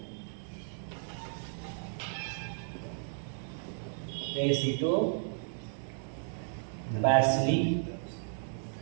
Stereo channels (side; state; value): left; silent; digital silence